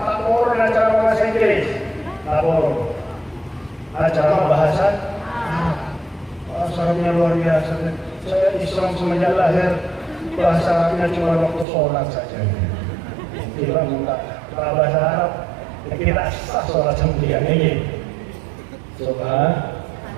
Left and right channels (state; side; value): drops out; left; at 11.7 s